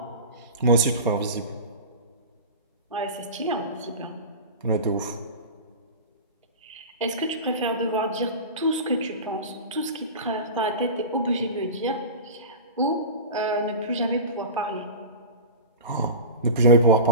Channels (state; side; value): inverted; both; correlation -0.30